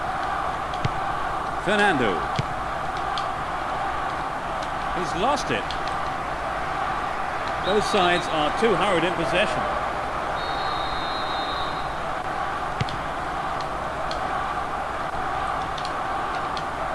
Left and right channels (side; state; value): both; identical; correlation 1.00